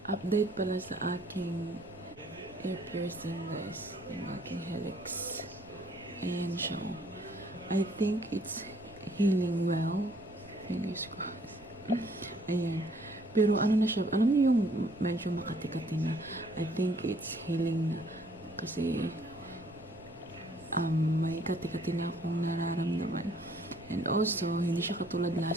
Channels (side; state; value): right; noise; rumble, 22 dB below the sound